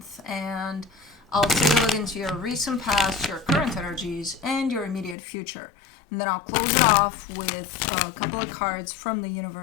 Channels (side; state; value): right; drops out; at 5.2 s